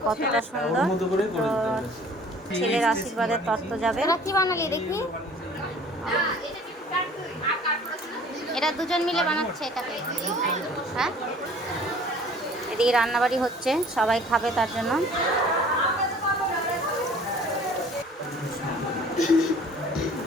কতটা সুন্দর। তো ছেলের আশীর্বাদের তত্ত্ব যাবে। কি বানালি দেখি? এটা দুজন মিলে বানাচ্ছে এটাকে। হ্যাঁ, এদিকে রান্নাবাড়ি হচ্ছে, সবাই খাবে তার জন্য।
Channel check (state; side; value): normal; both; correlation 0.50